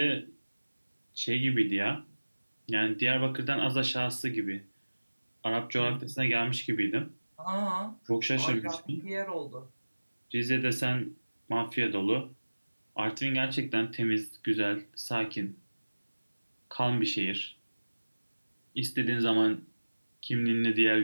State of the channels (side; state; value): both; inverted; correlation -1.00